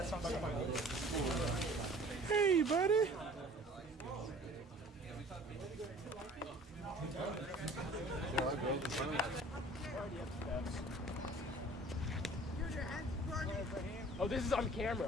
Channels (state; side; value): normal; both; correlation 0.48